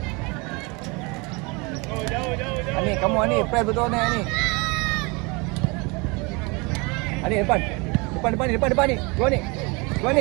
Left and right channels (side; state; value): left; quieter; 28.0 dB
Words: Anik, kamu Anik. Press betul Anik. Anik depan Anik. Go Anik.